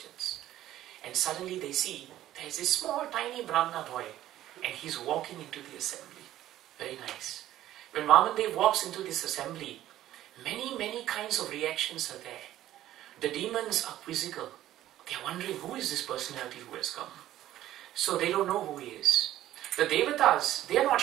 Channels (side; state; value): left; quieter; 13.4 dB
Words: And suddenly they see there is this small tiny Brahmana boy, and he's walking into the assembly. Very nice. When Vamandev walks into this assembly, many kinds of reactions are there. The demons are quizzical. They are wondering, who is this personality who has come? So they don't know who he is. The Devatas, they are not